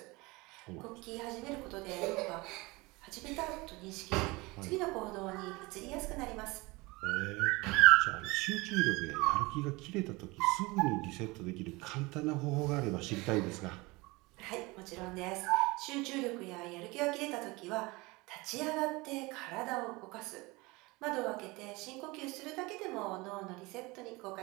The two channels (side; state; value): left; quieter; 23.6 dB